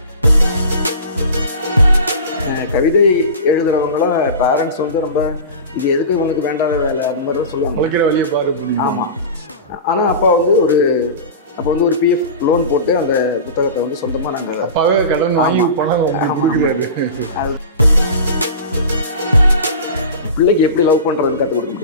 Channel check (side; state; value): both; inverted; correlation -0.33